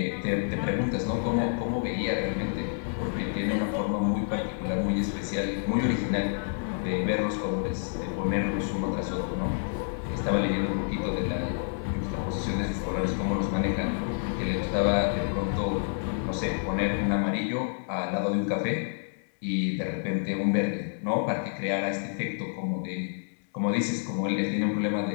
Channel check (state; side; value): silent; right; 59 dB below the other